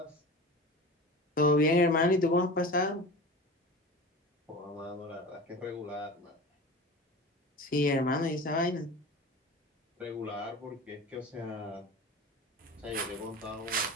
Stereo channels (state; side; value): normal; both; correlation 0.33